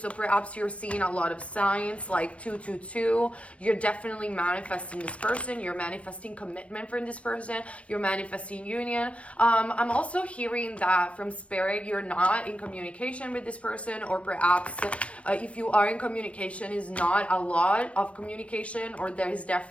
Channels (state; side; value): late; right; 0.062 ms